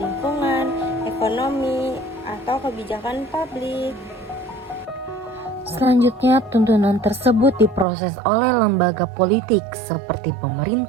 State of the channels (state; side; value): drops out; left; at 7.9 s